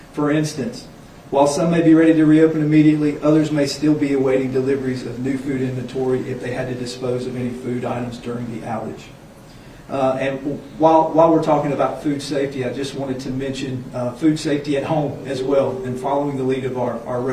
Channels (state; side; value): identical; both; correlation 1.00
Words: For instance, while some may be ready to reopen immediately, others may still be awaiting deliveries of new food inventory if they had to dispose of any food items during the outage. And while we're talking about food safety, I just wanted to mention food safety at home as well, and following the lead of our